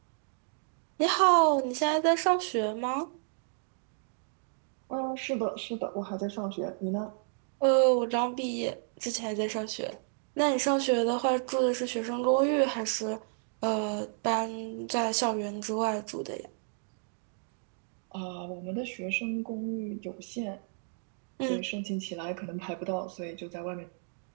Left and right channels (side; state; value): left; silent; digital silence